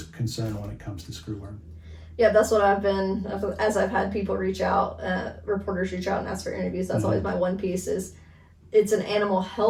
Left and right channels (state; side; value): identical; both; correlation 1.00